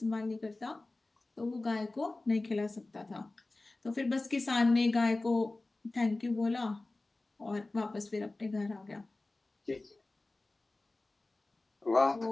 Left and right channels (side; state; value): right; quieter; 3.1 dB